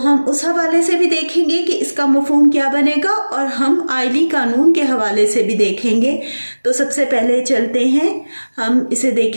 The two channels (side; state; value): both; inverted; correlation -1.00